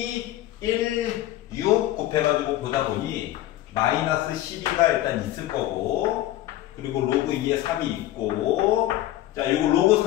1, 6 곱해가지고 보다 보니 마이너스 12가 일단 있을 거고, 그리고 로그 2에 3이 있고, 자, 요거 로그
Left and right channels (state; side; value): quieter; right; 14.5 dB